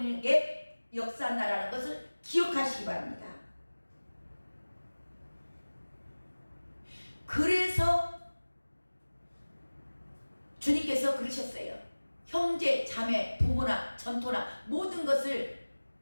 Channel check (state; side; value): inverted; both; correlation -1.00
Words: 역사한다라는 것을 기억하시기 바랍니다. 그래서 주님께서 그러셨어요. 형제, 자매, 부모나 전토나 모든 것을